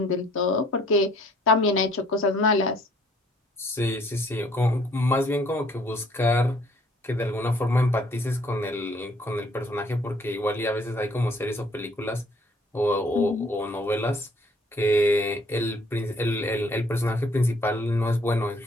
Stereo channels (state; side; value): normal; both; correlation 0.61